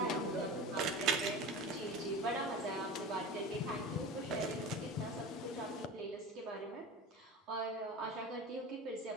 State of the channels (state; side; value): normal; both; correlation 0.31